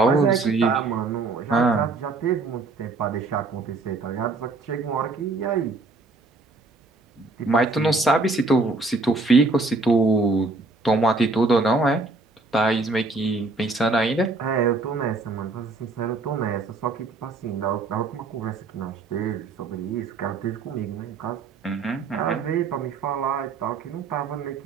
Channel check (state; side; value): quieter; left; 3.6 dB